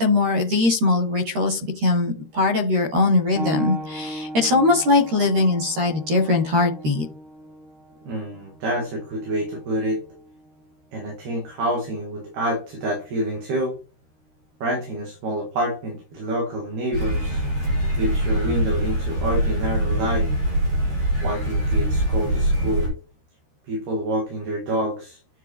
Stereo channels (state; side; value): late; left; 13 ms